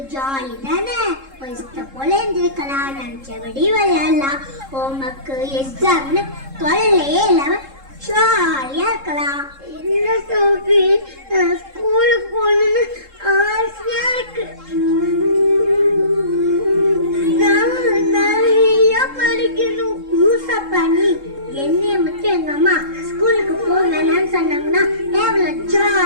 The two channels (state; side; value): late; left; 3.7 ms